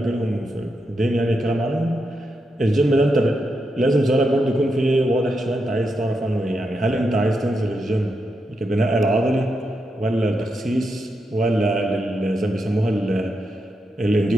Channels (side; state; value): both; normal; correlation 0.85